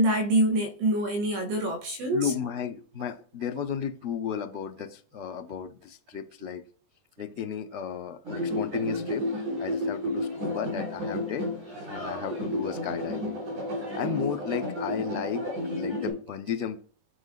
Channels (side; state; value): left; late; 20 ms